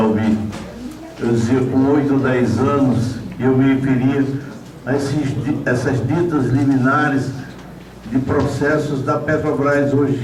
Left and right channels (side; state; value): both; identical; correlation 1.00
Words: eu dizia, com 8, 10 anos, eu me referia a essas ditas liminares de processos da Petrobras